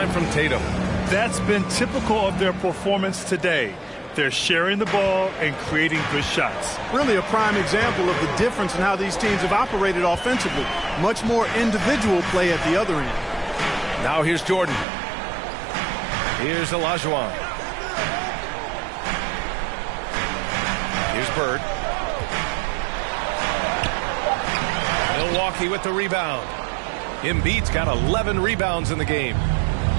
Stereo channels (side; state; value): left; drops out; at 14.9 s